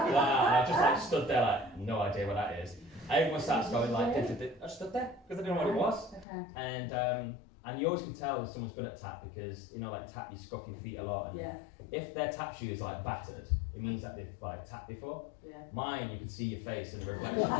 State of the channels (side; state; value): right; drops out; at 6.2 s